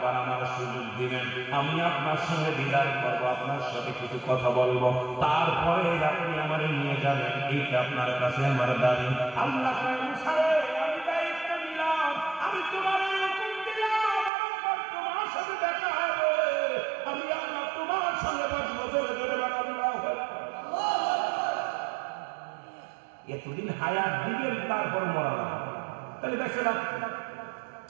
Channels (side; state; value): left; drops out; at 14.3 s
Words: বার আমার সুযোগ দিবেন, আমি আপনার সঙ্গে দিদার করবো, আপনার সাথে কিছু কথা বলবো, তারপরে আপনি আমার নিয়ে যাবেন, এইটা আপনার কাছে আমার দাবি। আল্লাহ আমি দায়িত্ব নিলাম, আমি তোমার হুকুম দিলাম, তোমার সাথে দেখা হবে, আমি আল্লাহ তোমার সঙ্গে বসবো, ধরে ধরে এতদিন হায়াত দিবেন তারপর মরা না, তাহলে দেখছে না